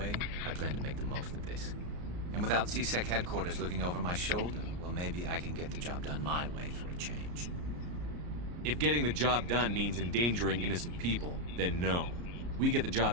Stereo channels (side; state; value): left; late; 34 ms